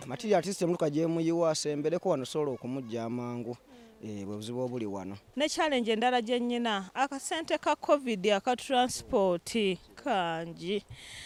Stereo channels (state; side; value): identical; both; correlation 1.00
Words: Material artist muluka gye muyiwa asembereko wano sobola okumujja amangu. Bwe buzibu obuli wano. Ne challenge endala gye nnyina akasente ka COVID aka transport kangi.